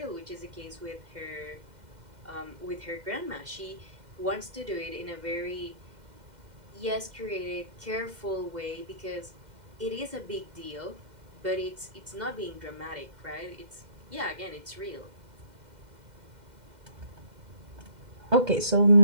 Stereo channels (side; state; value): left; late; 2.1 ms